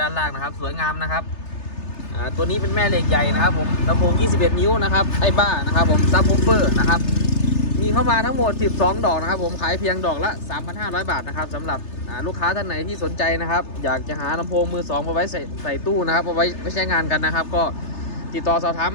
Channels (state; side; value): late; right; 3.3 ms